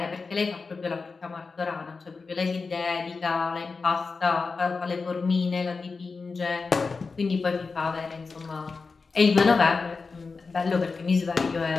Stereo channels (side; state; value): right; quieter; 4.4 dB